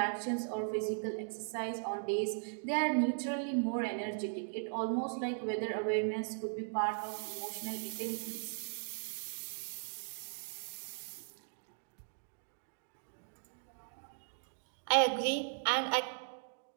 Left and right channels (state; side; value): silent; left; digital silence